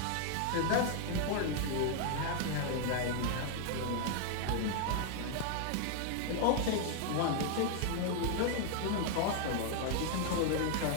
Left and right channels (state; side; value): different; both; correlation 0.00